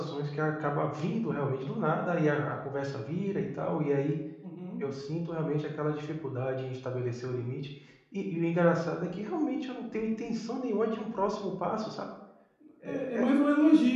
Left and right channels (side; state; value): both; identical; correlation 1.00